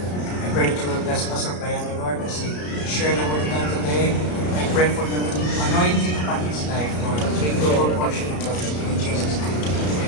I pray that you will bless Pastor Brian, Lord, as he share the word of God today. I pray for the anointing upon his life, Lord. Take double portion of God in Jesus' name.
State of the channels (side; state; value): right; late; 33 ms